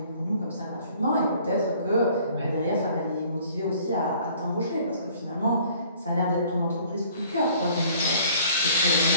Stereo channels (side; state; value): both; inverted; correlation -0.55